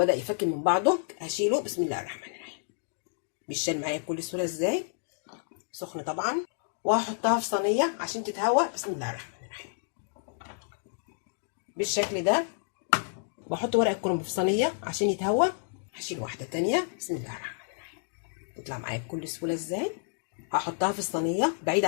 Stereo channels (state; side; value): silent; right; digital silence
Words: يفك من بعضه. هشيله. بسم الله الرحمن الرحيم. بيشال معايا بكل سهوله ازاي؟ سخنه طبعا. وهحطها في صينيه عشان تتهوى. بسم الله الرحمن الرحيم. بالشكل ده. بحط ورق الكرنب في صينيه عشان يتهوى. هشيل واحده تانية. بسم الله الرحمن الرحيم. تطلع معايا بكل سهوله ازاي؟ هحطها في الصينيه بعيد